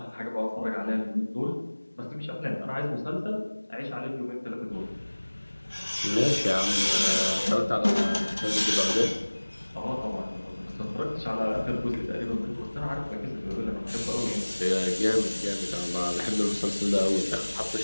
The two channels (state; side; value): inverted; both; correlation -1.00